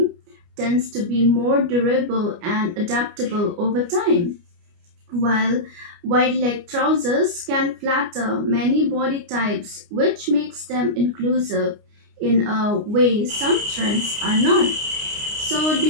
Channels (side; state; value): left; late; 29 ms